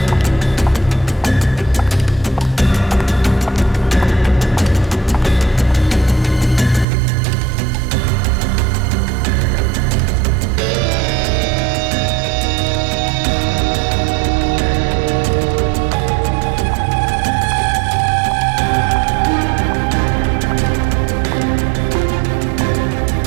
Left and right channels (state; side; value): drops out; left; at 6.9 s